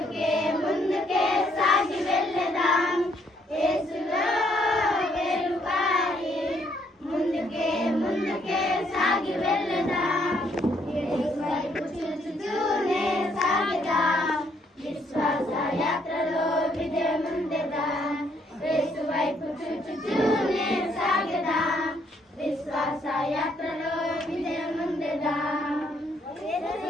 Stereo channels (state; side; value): normal; both; correlation 0.69